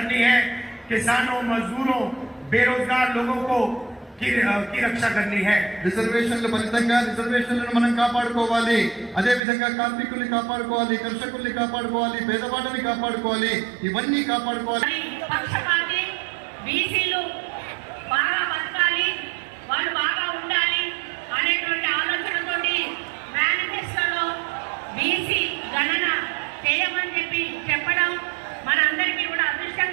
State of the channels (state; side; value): drops out; left; at 9.4 s